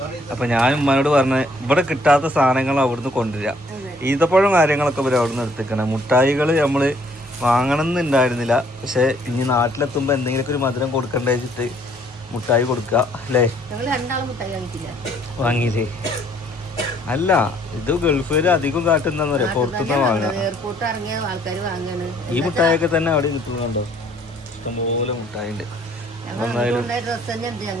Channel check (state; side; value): normal; both; correlation 0.63